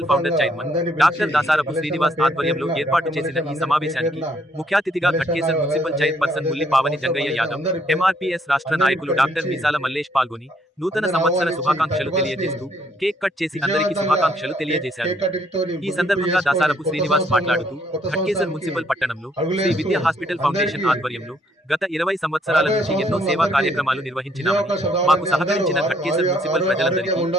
founder chairman doctor Dasarapu Srinivas ఆధ్వర్యంలో ఏర్పాటు చేసిన ఈ సమావేశానికి ముఖ్య అతిథిగా Ghatkesar municipal chairperson Mulli Pavani Jangaiah Yadav, MRPS రాష్ట్ర నాయకులు డాక్టర్ మీసాల మల్లేష్ పాల్గొని నూతన సంవత్సర శుభాకాంక్షలు తెలియజేస్తూ కేక్ కట్ చేసి అందరికీ శుభాకాంక్షలు తెలియజేశారు. ఈ సందర్భంగా దాసారపు శ్రీనివాస్ మాట్లాడుతూ ఘట్కేసర్ మున్సిపల్ పట్టణంలో శ్రీ విద్యా హాస్పిటల్ ఫౌండేషన్ ఆధ్వర్యంలో గత 20 సంవత్సరాల నుంచి ఎన్నో సేవా కార్యక్రమాలు నిర్వహించినామని, మాకు సహకరించిన ఘట్కేసర్ మున్సిపల్ ప్రజలందరికీ,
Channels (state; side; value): normal; both; correlation 0.68